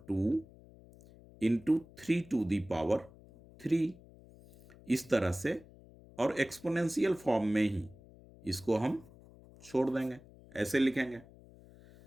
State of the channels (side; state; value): left; noise; hum, 23 dB below the sound